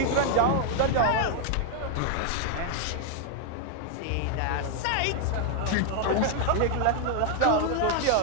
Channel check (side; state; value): both; different; correlation 0.00